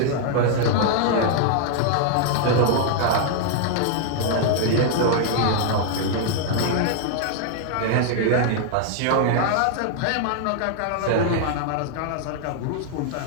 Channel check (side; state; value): both; different; correlation 0.00